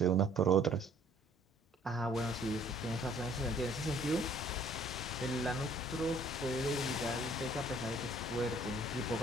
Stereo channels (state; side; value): normal; both; correlation 0.58